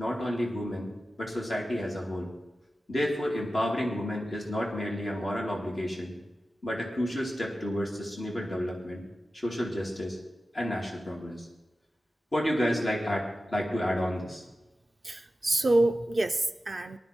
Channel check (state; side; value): normal; both; correlation 0.94